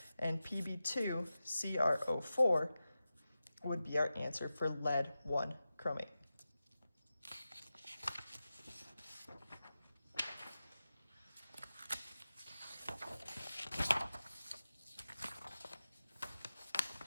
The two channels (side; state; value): both; inverted; correlation -0.93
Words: And Pb2 CrO4 would be our answer for lead 1 chromate.